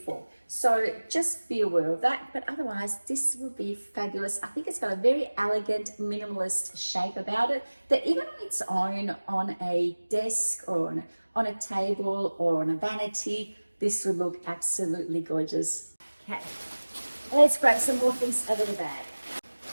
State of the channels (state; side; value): inverted; both; correlation -1.00